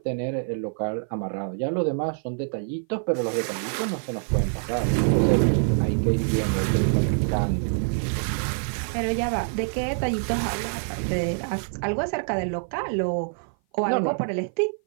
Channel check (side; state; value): left; silent; 56 dB below the other